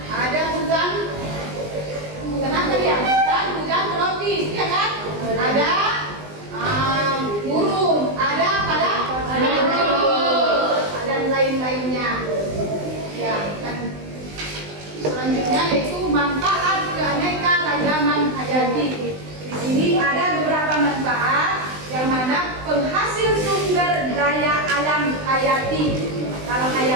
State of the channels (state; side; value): late; left; 20 ms